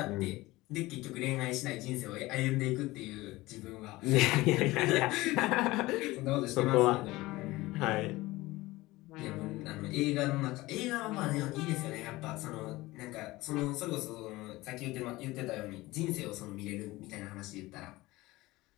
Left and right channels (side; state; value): right; quieter; 19.5 dB